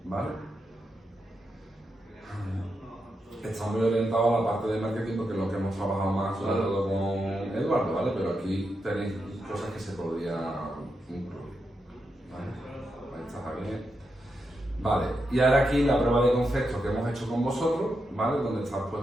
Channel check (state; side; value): normal; both; correlation 0.85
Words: ¿vale? Está muy orientado a la parte de marketing porque es lo que hemos trabajado más, sobre todo con Eduardo, ¿vale? Pero aquí tenéis cosas que se podrían incluir, ¿vale? Ahí está Javier. Vale, y ahora aquí la prueba de concepto que hemos hecho con vosotros, ¿vale? Donde está